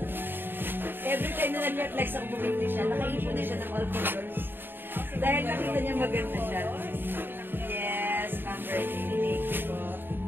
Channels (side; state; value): left; late; 0.097 ms